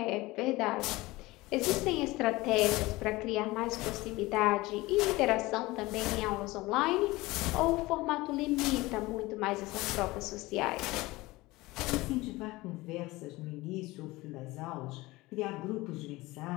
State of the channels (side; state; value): right; quieter; 20.4 dB